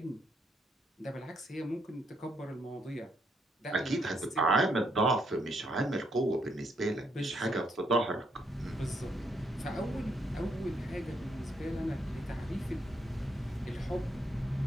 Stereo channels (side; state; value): both; normal; correlation 0.74